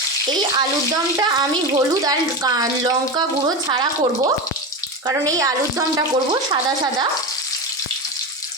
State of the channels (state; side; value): normal; both; correlation 0.20